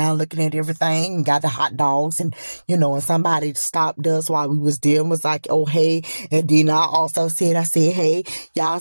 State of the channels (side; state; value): both; inverted; correlation -1.00